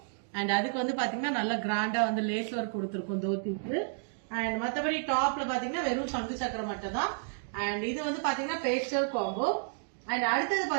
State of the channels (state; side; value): silent; left; digital silence